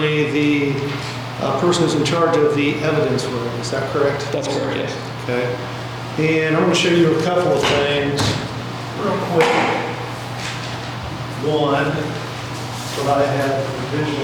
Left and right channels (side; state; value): both; identical; correlation 1.00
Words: the person who's in charge of the evidence room, is that correct? That's correct, yes. Okay. And I'm going to show you a couple of things real quick. One, what I have